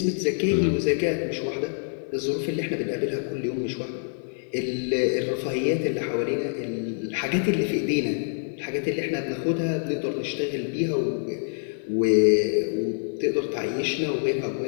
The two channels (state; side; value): silent; right; 61 dB below the other